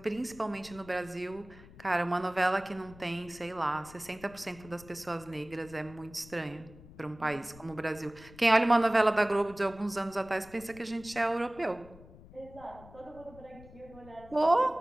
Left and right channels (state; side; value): noise; left; rumble, 20 dB below the sound